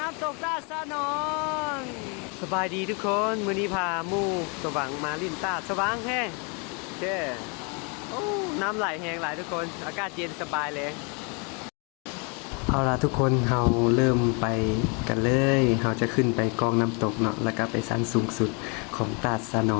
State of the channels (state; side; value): quieter; right; 34.1 dB